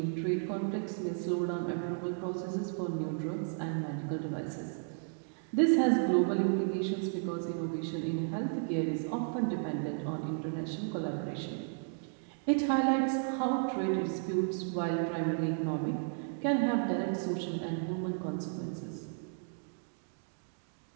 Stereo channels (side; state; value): left; silent; digital silence